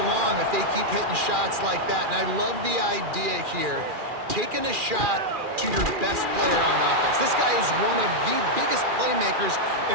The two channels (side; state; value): left; late; 2.4 ms